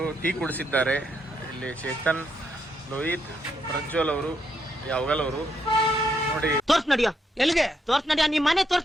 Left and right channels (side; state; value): both; normal; correlation 0.77